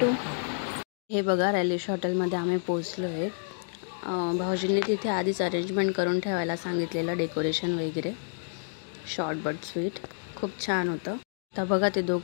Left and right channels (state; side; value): silent; right; digital silence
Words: हे बघा, रॅलिश हॉटेलमध्ये आम्ही पोहोचलो आहे। भाऊजींनी तिथे आधीच अरेंजमेंट करून ठेवायला सांगितलेलं, डेकोरेशन वगैरे। शॉर्ट बट स्वीट खूप छान होतं। आता बघा, ते